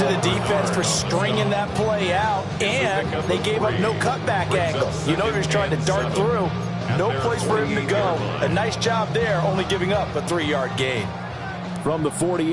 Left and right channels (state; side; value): identical; both; correlation 1.00